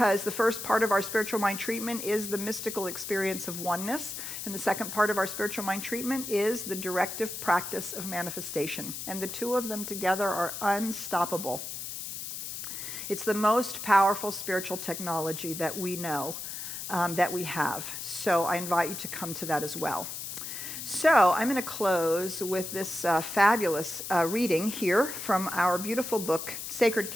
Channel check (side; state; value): left; noise; hiss, 7 dB below the sound